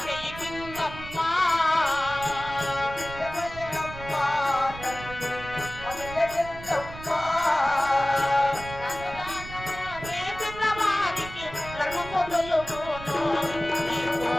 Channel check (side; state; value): right; noise; rumble, 13 dB below the sound